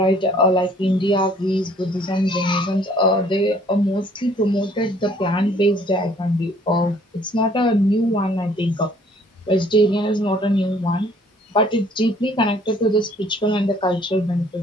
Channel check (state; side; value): normal; both; correlation 0.59